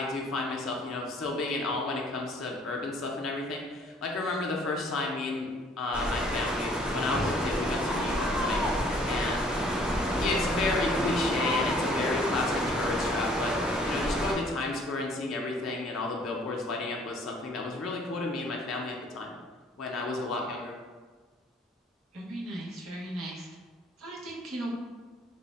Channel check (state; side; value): normal; both; correlation 0.58